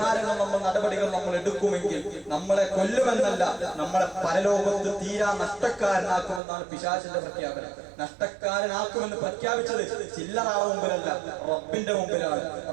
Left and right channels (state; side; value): drops out; left; at 6.4 s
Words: നടപടികൾ നമ്മൾ എടുക്കുമെങ്കിൽ നമ്മളെ കൊല്ലുമെന്നല്ല, നമ്മളെ പരലോകത്ത് തീരാ നഷ്ടക്കാരനാക്കുമെന്നാണ് പിശാചിന്റെ പ്രഖ്യാപനം. നഷ്ടക്കാരനാക്കുമെന്ന് പ്രഖ്യാപിച്ചത് ചില്ലറാ മുമ്പിലല്ല, റബ്ബിന്റെ മുമ്പിലാണ്,